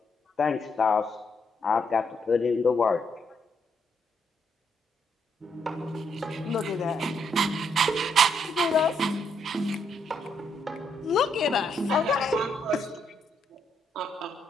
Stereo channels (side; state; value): both; normal; correlation 0.75